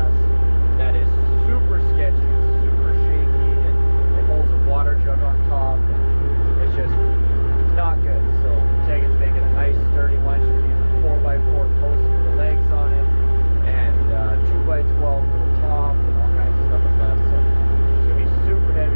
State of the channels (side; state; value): both; inverted; correlation -1.00